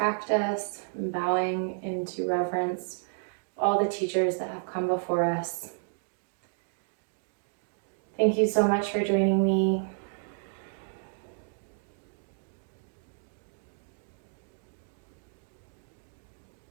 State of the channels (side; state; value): left; silent; digital silence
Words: and bowing into reverence for all the teachers that have come before us. Thank you so much for joining me.